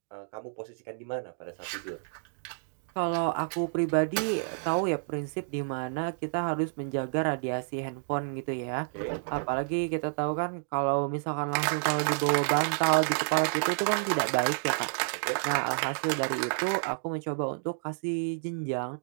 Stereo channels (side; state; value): left; silent; digital silence